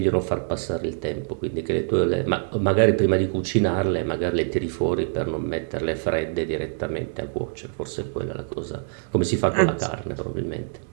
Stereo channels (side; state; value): left; silent; 62 dB below the other